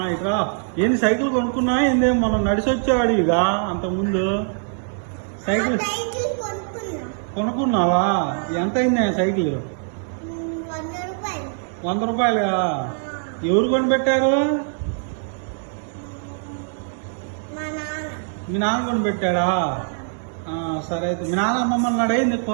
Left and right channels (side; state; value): left; silent; 64 dB below the other